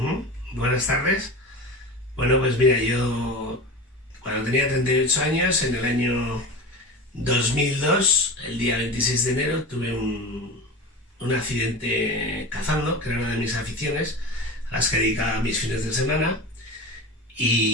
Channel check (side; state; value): both; normal; correlation 0.30